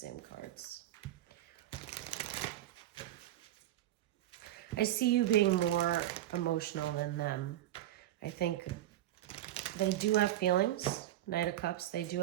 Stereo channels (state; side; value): quieter; left; 13.6 dB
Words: cards. I see you being more emotional than them. I think they do have feelings. Knight of Cups, they do